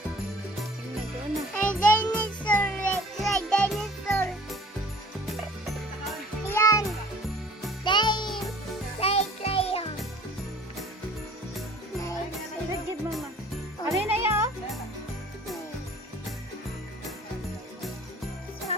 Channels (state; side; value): normal; both; correlation 0.50